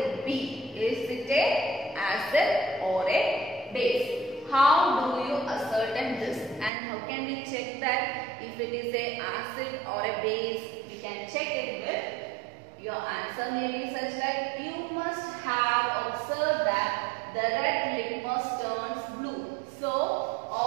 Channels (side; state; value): left; drops out; at 6.7 s